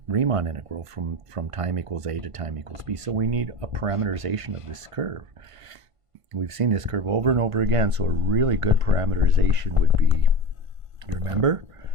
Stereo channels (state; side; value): late; left; 1.5 ms